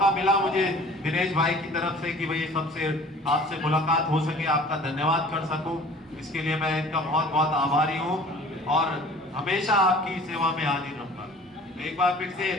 मिला मुझे दिनेश भाई की तरफ से कि भाई सबसे आपसे मुलाकात हो सके, आपका धन्यवाद कर सकूं, इसके लिए मैं इनका बहुत बहुत आभारी हूं और हमेशा आपकी सेवा में हाजिर रहूंगा। एक बार फिर से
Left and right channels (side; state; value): both; normal; correlation 0.48